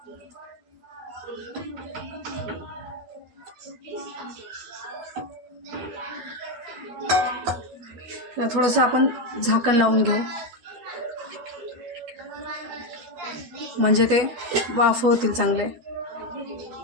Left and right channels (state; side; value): late; left; 12 ms